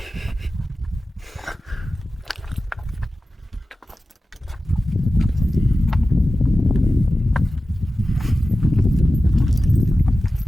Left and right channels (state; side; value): normal; both; correlation 0.94